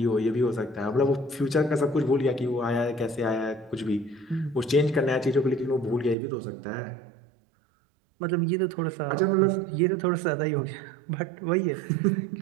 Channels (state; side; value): drops out; left; at 6.2 s